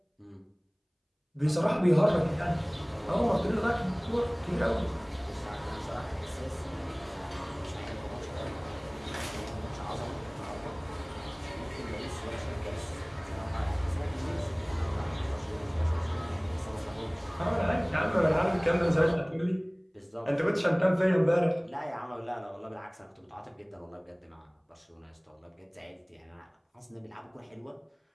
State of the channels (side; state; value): both; identical; correlation 1.00